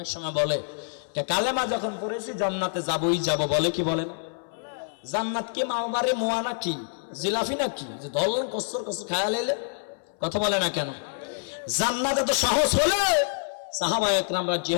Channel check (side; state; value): right; silent; 60 dB below the other